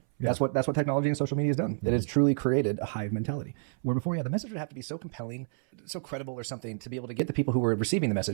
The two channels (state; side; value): silent; left; 58 dB below the other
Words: Yeah. That's what technology and social media has done. Mm-hmm. It has truly created a hive mentality. Where before you had the message, you had to be so compelling, so credible, or something. Get the people who were receiving the